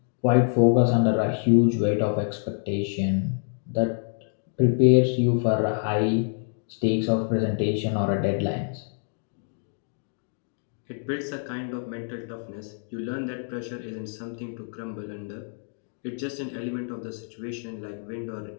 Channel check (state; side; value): silent; right; 57 dB below the other